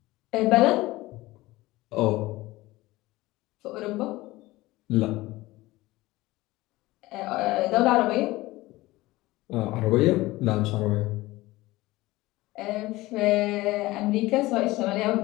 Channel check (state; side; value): quieter; right; 19.1 dB